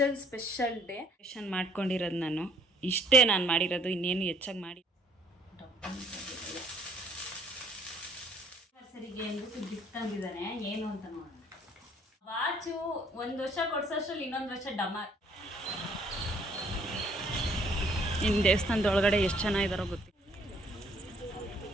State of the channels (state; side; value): normal; both; correlation 0.61